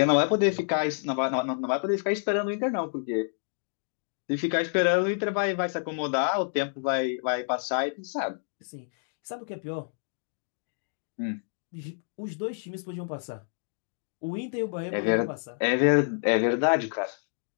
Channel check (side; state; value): right; silent; digital silence